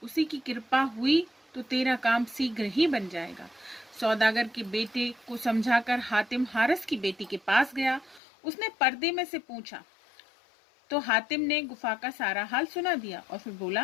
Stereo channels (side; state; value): right; drops out; at 8.2 s